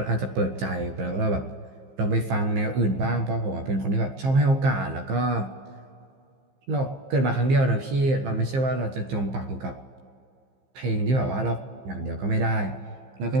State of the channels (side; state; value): left; late; 15 ms